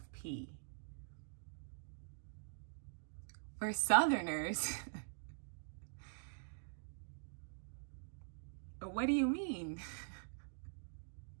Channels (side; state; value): left; silent; digital silence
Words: P? For Southerners, what do you mean?